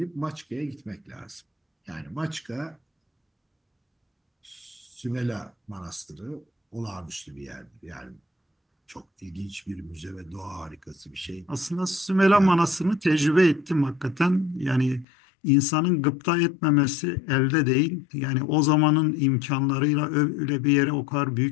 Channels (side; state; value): right; drops out; at 15.1 s